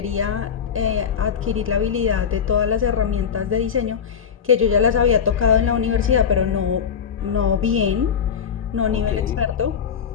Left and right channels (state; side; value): quieter; right; 7.3 dB